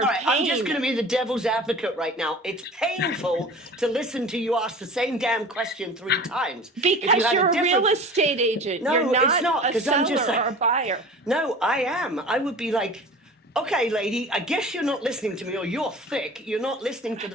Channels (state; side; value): normal; both; correlation 0.39